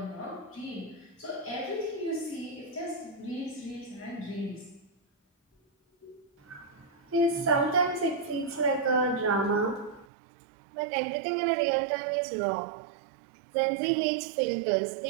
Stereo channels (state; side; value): drops out; left; at 10.1 s